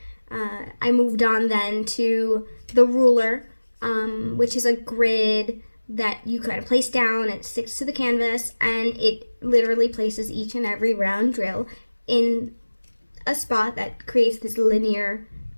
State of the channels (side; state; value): both; inverted; correlation -1.00